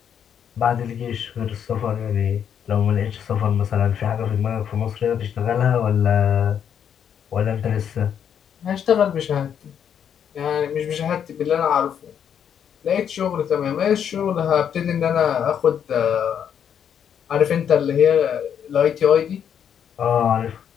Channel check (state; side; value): quieter; right; 8.5 dB